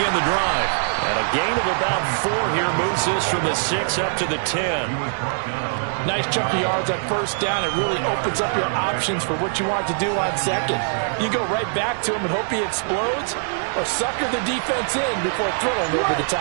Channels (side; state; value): left; silent; digital silence